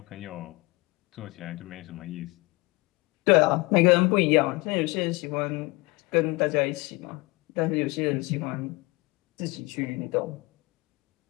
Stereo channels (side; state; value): right; quieter; 24.6 dB